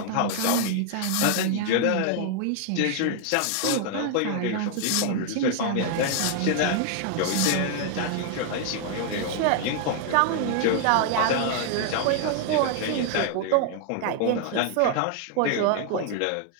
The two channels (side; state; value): both; different; correlation 0.00